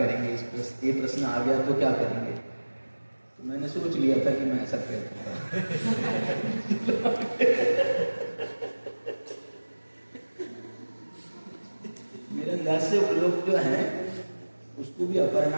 ये प्रश्न आ गया तो क्या करेंगे। तो मैंने सोच लिया था कि मैं ऐसा करूँगा। मेरे अंदाज से वो लोग जो हैं उसको भी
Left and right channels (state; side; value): inverted; both; correlation -1.00